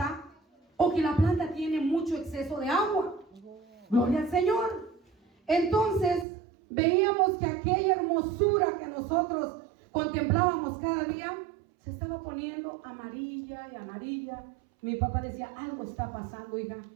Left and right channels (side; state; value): left; drops out; at 6.2 s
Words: o que la planta tiene mucho exceso de agua. Gloria al Señor. Entonces veíamos que aquella hermosura que nosotros contemplábamos cada día se estaba poniendo amarilla y amarilla. Mi papá decía, algo está pasando, hija.